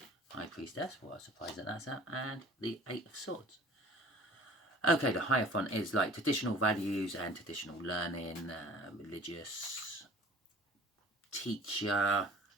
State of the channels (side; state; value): both; normal; correlation 0.48